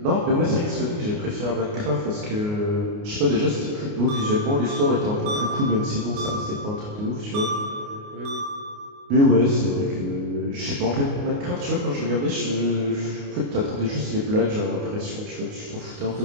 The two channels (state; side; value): late; left; 29 ms